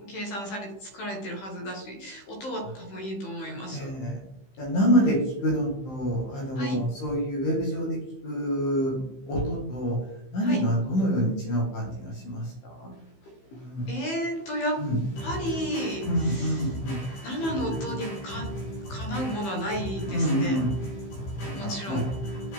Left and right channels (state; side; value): late; right; 15 ms